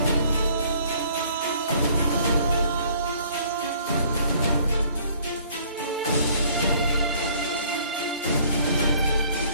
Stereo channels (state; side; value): inverted; both; correlation -0.58